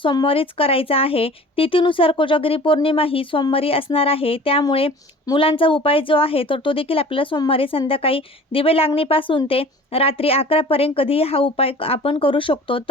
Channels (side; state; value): both; normal; correlation 0.44